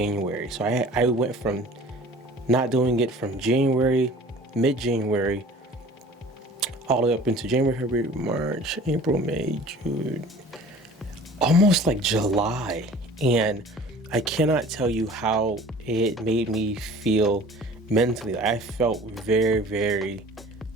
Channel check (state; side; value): normal; both; correlation 0.46